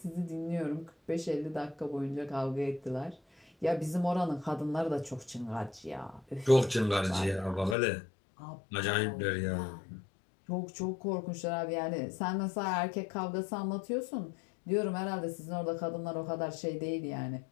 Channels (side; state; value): right; drops out; at 7.8 s